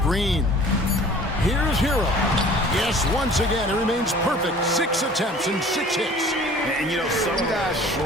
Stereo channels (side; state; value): both; normal; correlation 0.48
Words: Here's Hero. Yes, once again, it remains perfect. 6 attempts and 6 hits. And you know, some guys